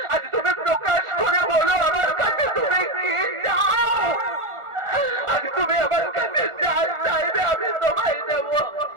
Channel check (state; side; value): late; left; 1.4 ms